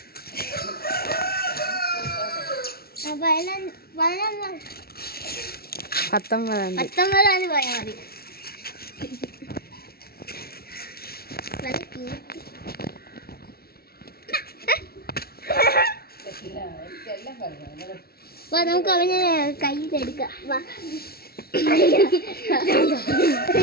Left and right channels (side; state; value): right; late; 0.44 ms